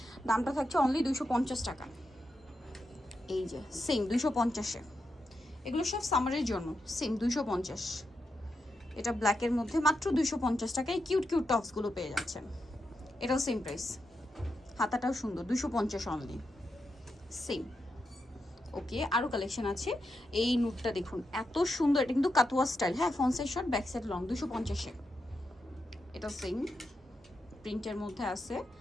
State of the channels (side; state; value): both; normal; correlation 0.85